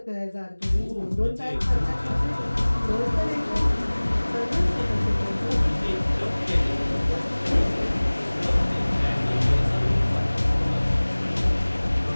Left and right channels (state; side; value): inverted; both; correlation -1.00